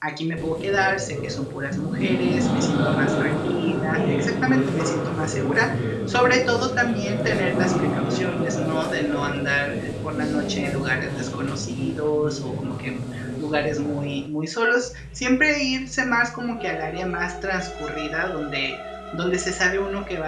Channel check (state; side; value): identical; both; correlation 1.00